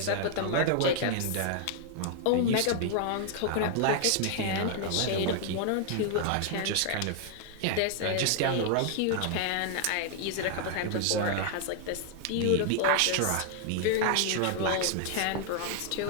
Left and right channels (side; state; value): both; different; correlation 0.00